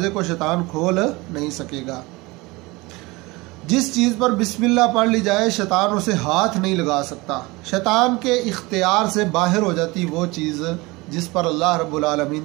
کو شیطان کھول نہیں سکے گا۔ جس چیز پر بسم اللہ پڑھ لی جائے شیطان اسے ہاتھ نہیں لگا سکتا، شیطان کے اختیار سے باہر ہو جاتی وہ چیز جس پر اللہ رب العالمین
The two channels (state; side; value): quieter; left; 23.1 dB